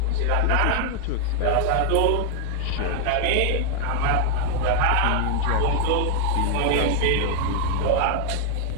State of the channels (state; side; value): different; both; correlation 0.00